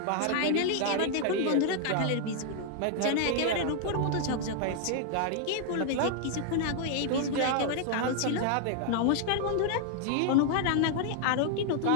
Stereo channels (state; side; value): different; both; correlation 0.00